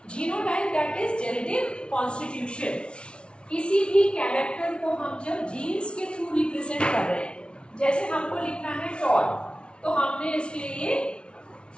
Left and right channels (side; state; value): right; late; 0.058 ms